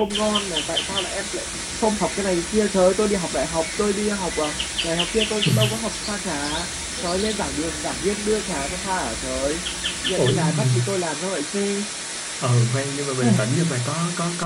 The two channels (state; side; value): identical; both; correlation 1.00